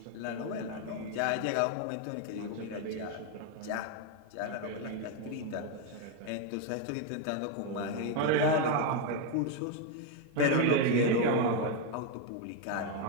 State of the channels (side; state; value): both; different; correlation 0.02